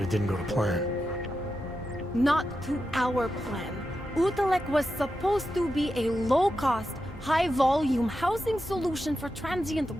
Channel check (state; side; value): noise; left; hum, 19 dB below the sound